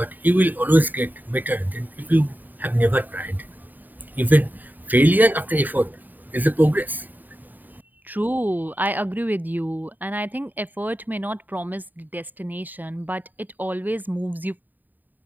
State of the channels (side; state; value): left; late; 0.087 ms